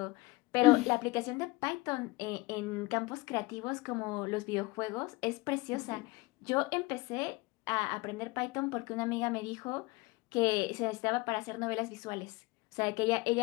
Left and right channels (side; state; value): right; quieter; 22.3 dB